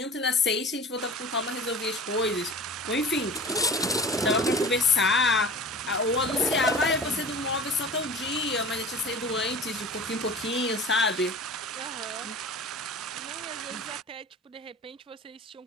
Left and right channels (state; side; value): normal; both; correlation 0.38